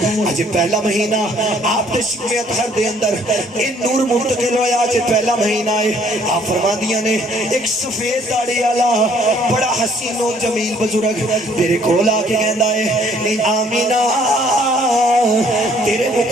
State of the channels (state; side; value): normal; both; correlation 0.61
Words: اج پہلا مہینہ آپ دے شکم اطہر دے اندر ان نور منتقل ہویا، اج پہلا مہینہ ہے۔ آپ فرماندیاں نے ایک سفید داڑھی والا بڑا حسین و جمیل بزرگ میرے کول آ کے کہندا ہے نی آمینہ تیرے